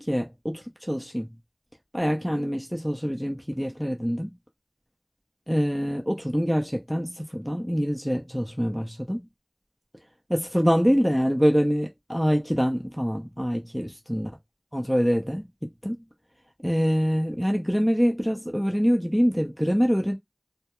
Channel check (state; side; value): identical; both; correlation 1.00